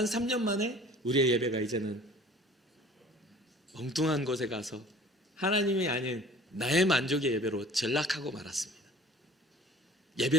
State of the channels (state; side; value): normal; both; correlation 0.48